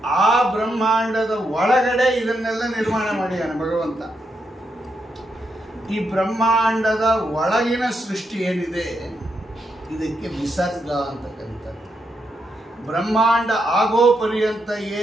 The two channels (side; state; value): both; normal; correlation 0.81